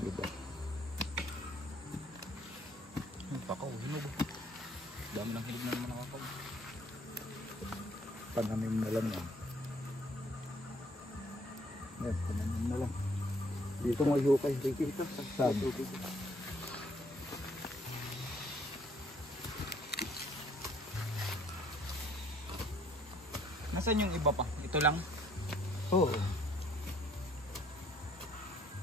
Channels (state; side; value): normal; both; correlation 0.62